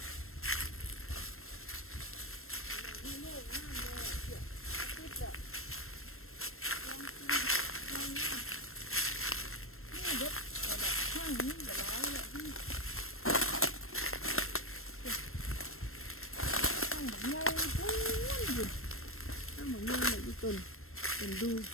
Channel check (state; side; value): late; right; 0.62 ms